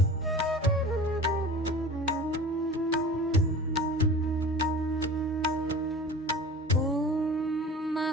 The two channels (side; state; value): both; normal; correlation 0.39